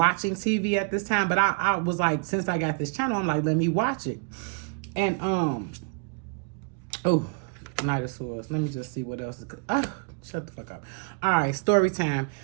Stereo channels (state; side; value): quieter; left; 35.3 dB